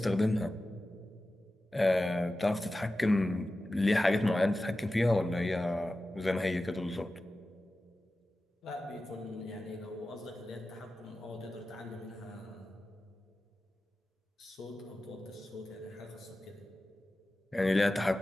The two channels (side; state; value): both; normal; correlation 0.94